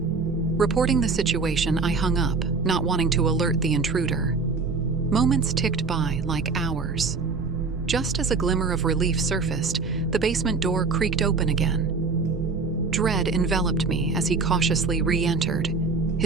Reporting the situation, I hung up, not wanting to alert the intruder. Moments ticked by like hours. Just as a glimmer of relief surfaced, the basement door creaked open again. Dread enveloped me as he cautiously re-entered,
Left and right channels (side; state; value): left; quieter; 4.3 dB